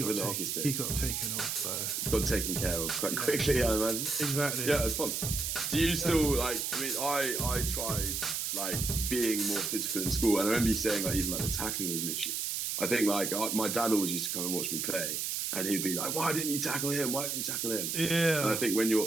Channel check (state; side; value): noise; right; hiss, 1 dB below the sound